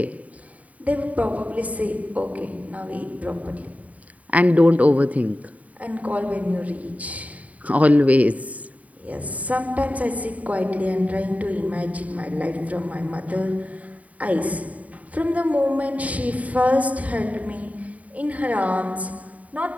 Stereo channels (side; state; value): left; late; 0.070 ms